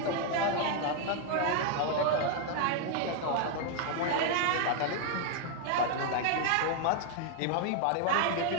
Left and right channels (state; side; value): different; both; correlation 0.00